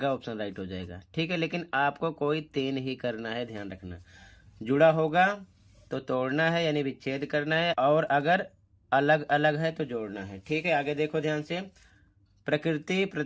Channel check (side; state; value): both; identical; correlation 1.00